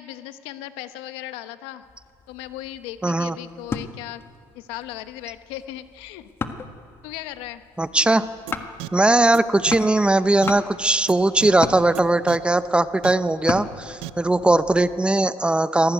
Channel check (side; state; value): both; normal; correlation 0.83